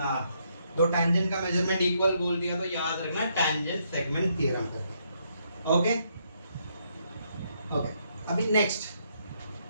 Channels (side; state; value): both; inverted; correlation -0.75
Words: दो टेंजेंट का मेजरमेंट इक्वल बोल दिया तो याद रखना tangent segment theorem. Okay okay अभी नेक्स्ट